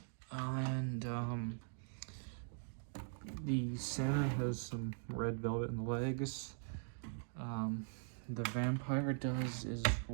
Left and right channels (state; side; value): silent; left; digital silence